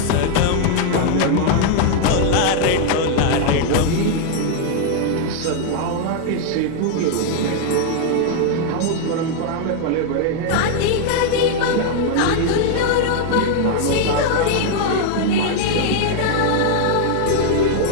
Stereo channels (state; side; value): different; both; correlation 0.00